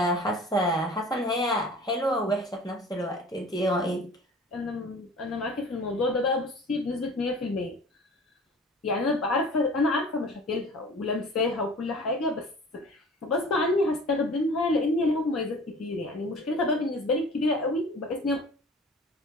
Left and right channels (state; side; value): normal; both; correlation 0.43